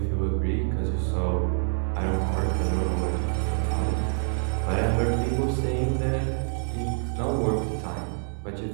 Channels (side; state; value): left; silent; 61 dB below the other